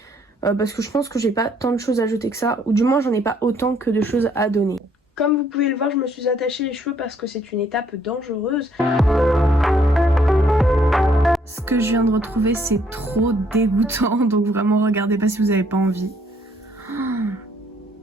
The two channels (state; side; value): normal; both; correlation 0.66